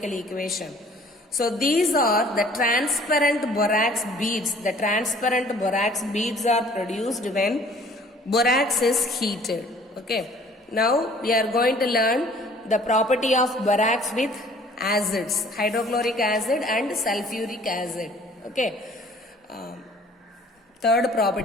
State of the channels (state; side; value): normal; both; correlation 0.53